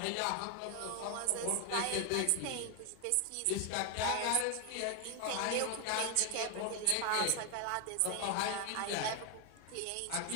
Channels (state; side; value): different; both; correlation 0.01